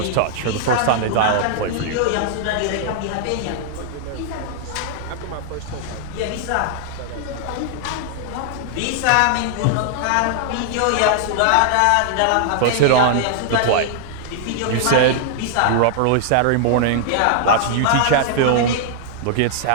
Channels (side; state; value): both; different; correlation -0.01